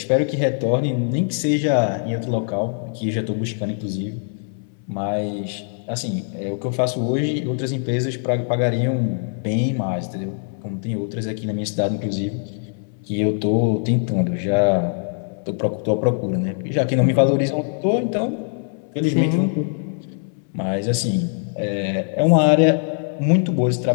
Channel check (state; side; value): silent; right; 64 dB below the other